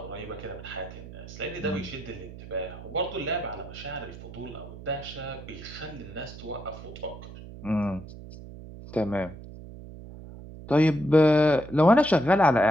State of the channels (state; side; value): noise; right; hum, 14 dB below the sound